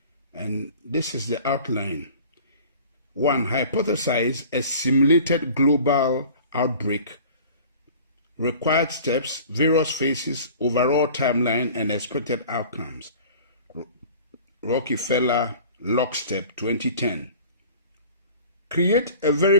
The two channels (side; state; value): both; inverted; correlation -0.44